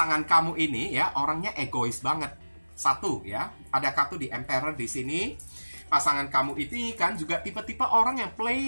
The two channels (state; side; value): inverted; both; correlation -1.00